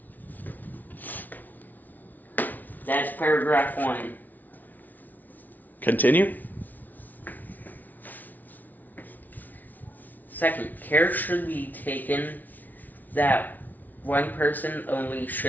That's paragraph 1. Continue. Second, care should be taken that one person only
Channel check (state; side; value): late; right; 0.081 ms